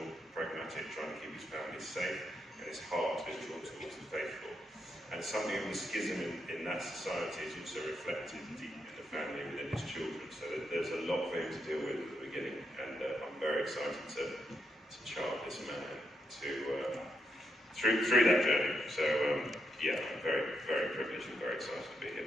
pragmatic, trying to keep his family safe, and his heart is drawn towards the faithful. And something of the schism in that society is also reflected deep in the family within his children. So there's a lot for him to deal with at the beginning, and I'm very excited to chart this man through that journey. So yeah, I'm very, very privileged and very excited to be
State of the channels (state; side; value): normal; both; correlation 0.81